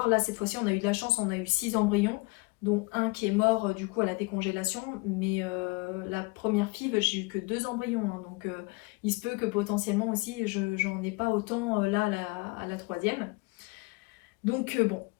Là, cette fois-ci, on a eu de la chance, on a eu 6 embryons, dont un qui est mort du coup à la décongélation. Mais la première FIV, j'ai eu que 2 embryons. Hein, donc il se peut que potentiellement aussi, j'en ai pas autant là à la troisième. Donc bon,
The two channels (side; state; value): right; quieter; 26.7 dB